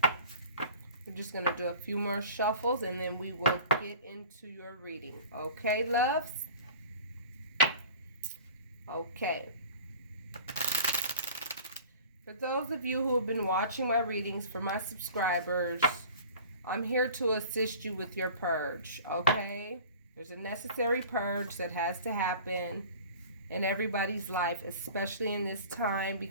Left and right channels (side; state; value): both; inverted; correlation -0.42